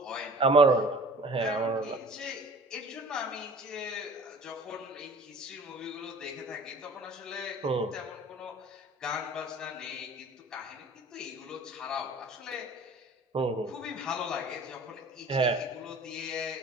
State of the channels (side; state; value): both; normal; correlation 0.46